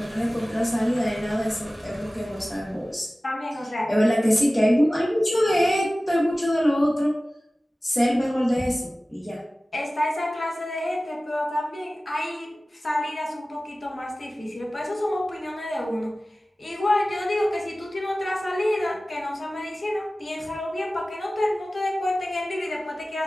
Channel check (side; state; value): both; normal; correlation 0.97